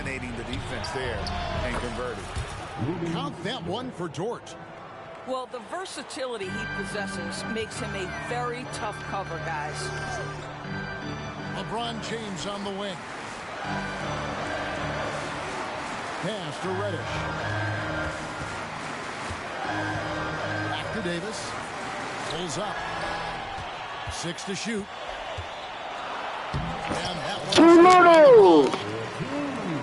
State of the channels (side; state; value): both; identical; correlation 1.00